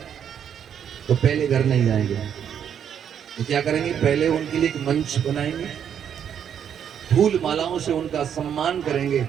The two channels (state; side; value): quieter; left; 8.6 dB